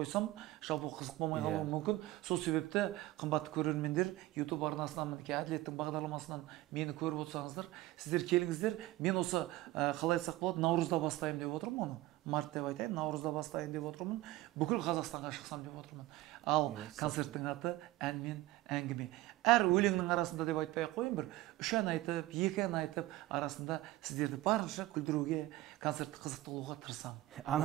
жалпы қызық болмай қалуы мүмкін. Сол себепті қымбатты көрермендер, YouTube арнасынан, мінекей Әділеттің бағдарламасынан мені көріп отырсаңыздар, сіздер келіңіздер. Мен осы қалай айтсақ болады, наурызда бастайын деп отырмын оны. Март деп айтайын, наурызда бастайын деп отырмын. Бүкіл Қазақстанға шықсам деп отырмын. Ал концерттің аты ән мен әңгіме. Әр өлеңнің арасында деп айтпай ақ қойын, бір 3 ән айтып, 2 ән айтып, арасында сіздерді барынша күлдіруге, концертті қызықты қылуға тырысамын.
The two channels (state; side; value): quieter; left; 17.4 dB